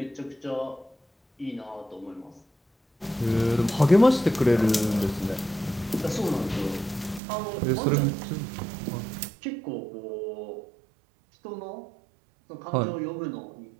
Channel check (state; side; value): drops out; left; at 7.2 s